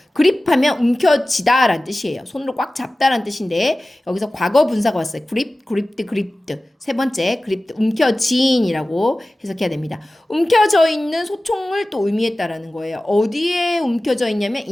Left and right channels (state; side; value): normal; both; correlation 0.96